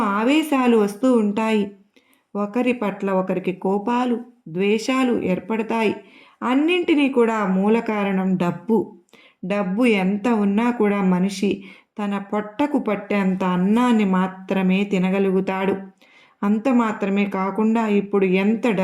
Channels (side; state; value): both; identical; correlation 1.00